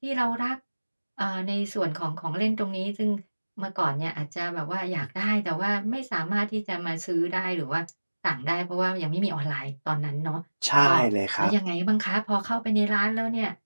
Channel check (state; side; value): inverted; both; correlation -1.00